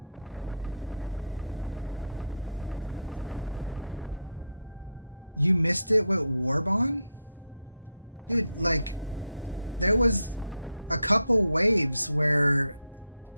You missed it with Warbond? Dude, like, there was a couple waves where...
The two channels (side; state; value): both; inverted; correlation -0.77